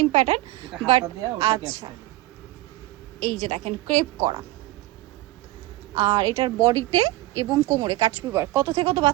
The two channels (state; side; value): quieter; left; 18.5 dB